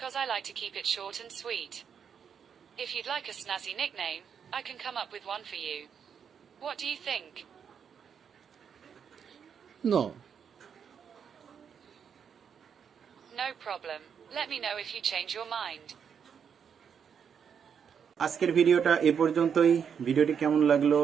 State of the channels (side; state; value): left; quieter; 7.3 dB